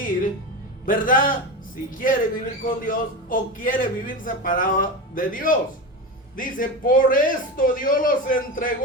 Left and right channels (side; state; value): both; normal; correlation 0.22